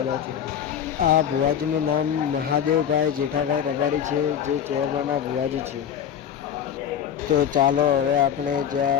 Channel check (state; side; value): quieter; right; 9.0 dB